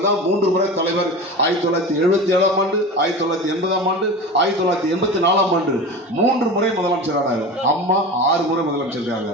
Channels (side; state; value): both; normal; correlation 0.30